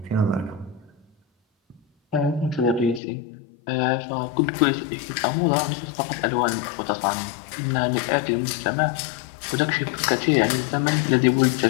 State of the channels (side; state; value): right; drops out; at 3.0 s